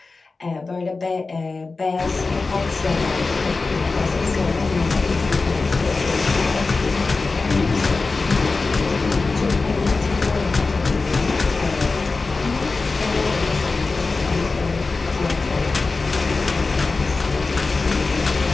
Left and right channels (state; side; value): quieter; right; 3.9 dB